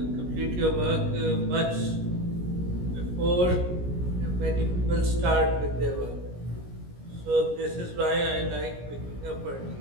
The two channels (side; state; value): left; late; 17 ms